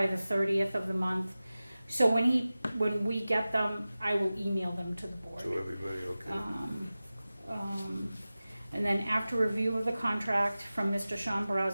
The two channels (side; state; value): both; inverted; correlation -0.96